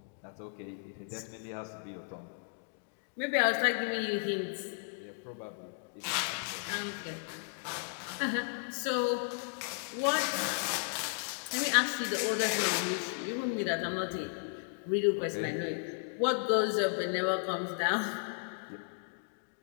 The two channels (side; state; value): right; silent; 55 dB below the other